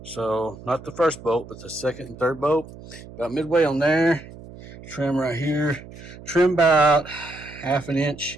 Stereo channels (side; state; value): right; noise; hum, 17 dB below the sound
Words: So not the first bolt, but the second and third bolt. About midway on there. Trim right here. Trim about half an